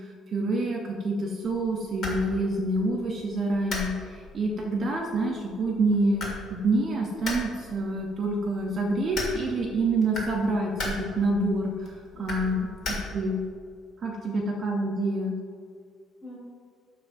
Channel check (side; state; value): both; normal; correlation 0.68